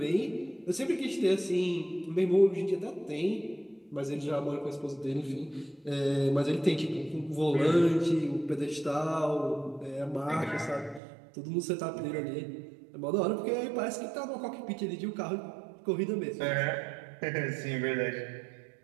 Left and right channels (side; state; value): left; drops out; at 11.0 s